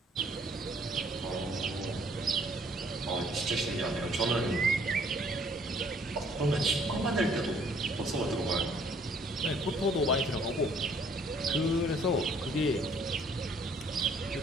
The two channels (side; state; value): both; normal; correlation 0.61